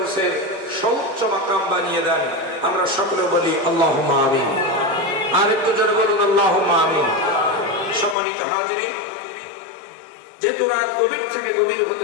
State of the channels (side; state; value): right; drops out; at 8.2 s